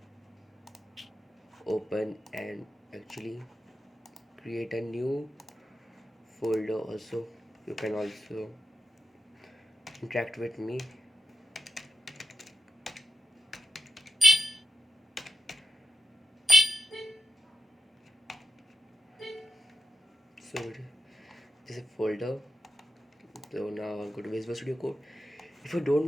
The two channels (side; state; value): both; normal; correlation 0.87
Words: open and actually create a new folder. Also, you can also interact with me. So this is a folder. So now I'll go to Visual Studio Code. If you don't